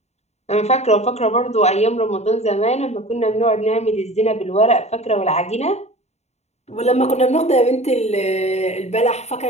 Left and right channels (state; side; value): late; right; 0.32 ms